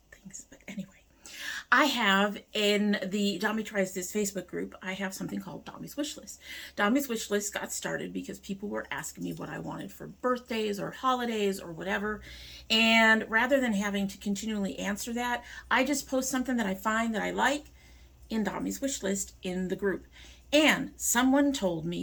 things, but anyway. I have in the domytriesthis Facebook group, I have something called Dommy's Wishlist. Dommy's Wishlist got started because people were asking me what I wanted for birthdays or holidays or whatever. And rather than having to continually answer that, I just post something that I find that I like in Dommy's Wishlist in the group. And someone told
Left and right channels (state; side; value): identical; both; correlation 1.00